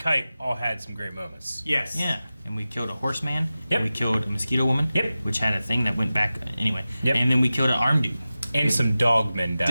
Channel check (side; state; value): both; inverted; correlation -0.95